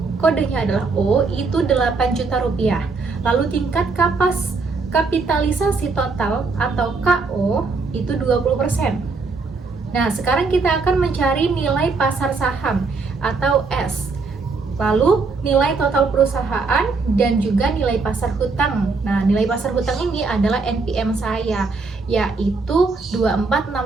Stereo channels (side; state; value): left; quieter; 4.2 dB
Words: kodenya adalah O itu 8 juta rupiah. Lalu tingkat kapitalisasi total atau KO itu 20%. Nah, sekarang kita akan mencari nilai pasar saham atau S. Lalu nilai total perusahaan dan juga nilai pasar hutang. Nah, nilai pasar hutang ini adalah NPM saya, yaitu